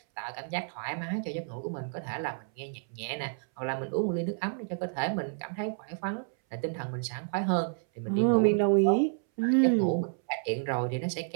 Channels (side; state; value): left; silent; 58 dB below the other